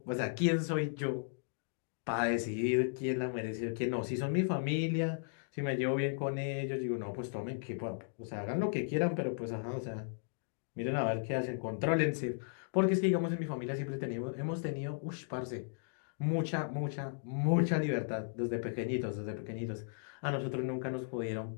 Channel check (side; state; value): right; silent; digital silence